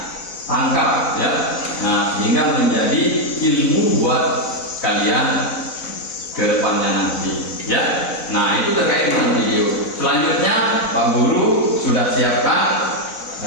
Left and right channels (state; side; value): late; right; 4.0 ms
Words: tangkap ya. Sehingga menjadi ilmu buat kalian ke depannya nanti ya. Nah, itu terkait dengan video. Selanjutnya Pak Guru sudah siapkan